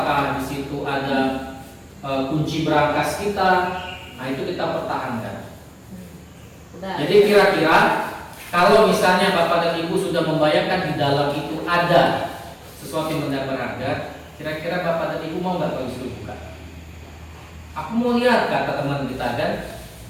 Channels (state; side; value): identical; both; correlation 1.00